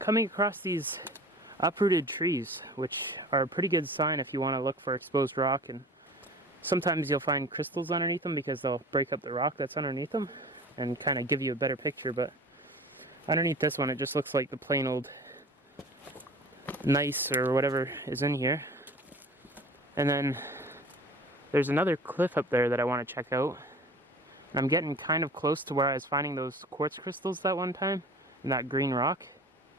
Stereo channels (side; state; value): both; normal; correlation 0.42